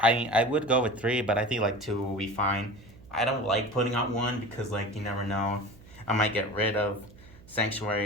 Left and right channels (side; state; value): right; noise; hum, 22 dB below the sound